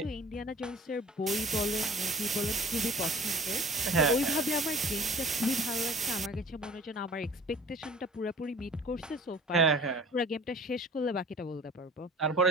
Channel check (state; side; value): normal; both; correlation 0.46